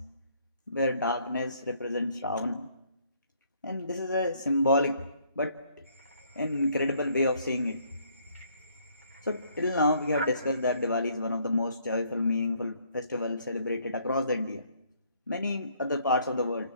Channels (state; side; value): inverted; both; correlation -0.66